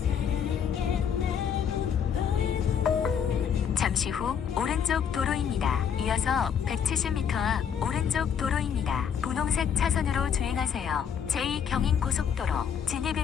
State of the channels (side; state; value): right; quieter; 7.8 dB